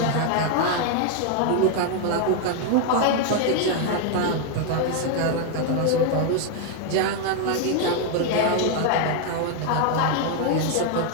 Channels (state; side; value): different; both; correlation 0.01